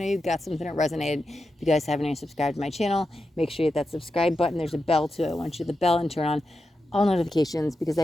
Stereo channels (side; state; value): both; normal; correlation 0.89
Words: you got something that resonated. If you guys haven't already subscribed to my channel, make sure you hit that subscribe button. There's a bell too. I want you to hit the bell and turn on all notifications because